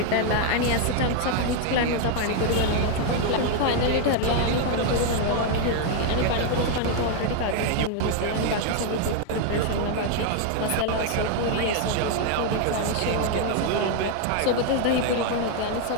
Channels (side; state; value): both; different; correlation 0.01